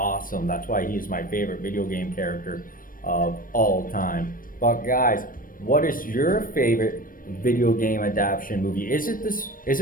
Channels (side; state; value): right; late; 0.40 ms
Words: That's why he's my favorite video game character of all time. But guys, what is your favorite video game adaptation movie? Is